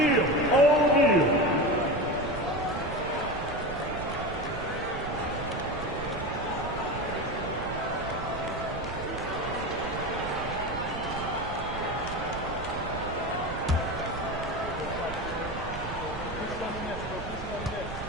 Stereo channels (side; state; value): right; noise; rumble, 10 dB below the sound